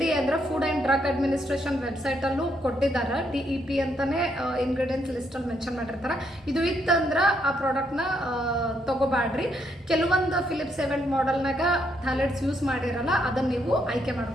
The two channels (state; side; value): normal; both; correlation 0.75